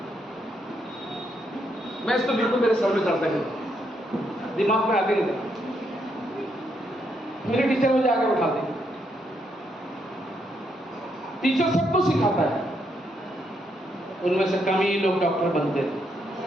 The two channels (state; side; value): normal; both; correlation 0.77